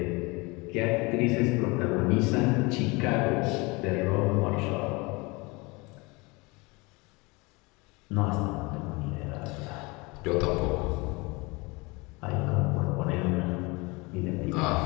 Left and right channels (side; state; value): right; quieter; 25.7 dB